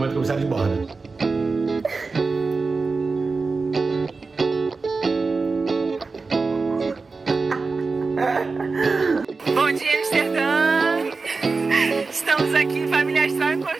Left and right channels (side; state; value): left; quieter; 4.1 dB